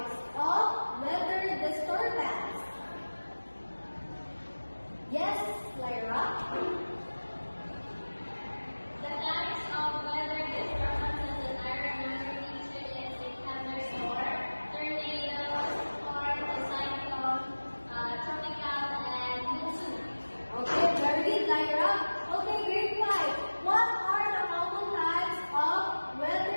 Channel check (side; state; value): both; inverted; correlation -1.00